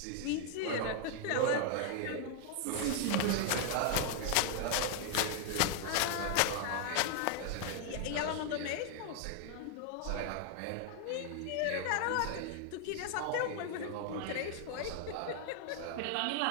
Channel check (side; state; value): both; different; correlation 0.00